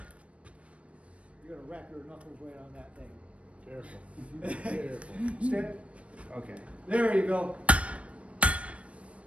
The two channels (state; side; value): late; left; 0.063 ms